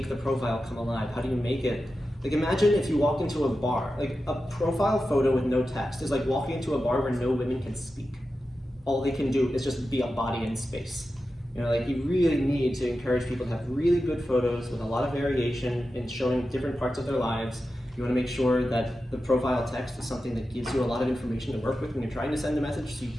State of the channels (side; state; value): both; normal; correlation 0.91